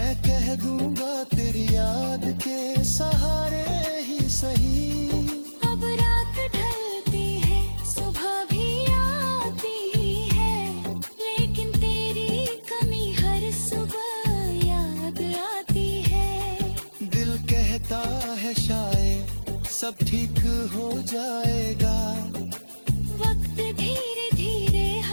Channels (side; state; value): both; inverted; correlation -1.00